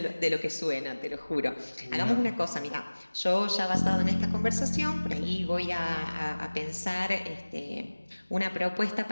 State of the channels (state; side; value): inverted; both; correlation -1.00